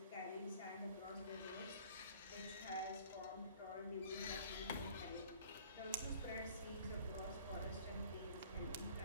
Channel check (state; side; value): inverted; both; correlation -0.51